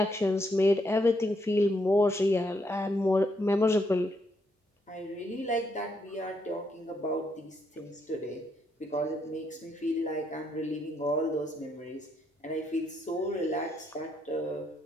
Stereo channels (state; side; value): normal; both; correlation 0.76